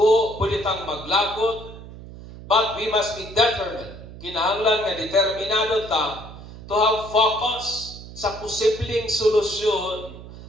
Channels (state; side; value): noise; right; hum, 15 dB below the sound